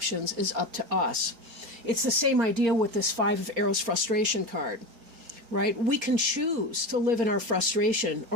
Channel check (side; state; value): left; late; 4.3 ms